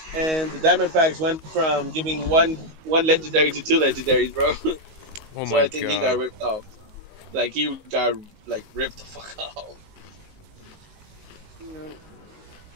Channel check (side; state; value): left; late; 19 ms